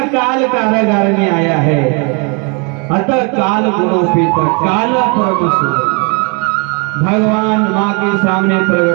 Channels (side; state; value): left; quieter; 33.2 dB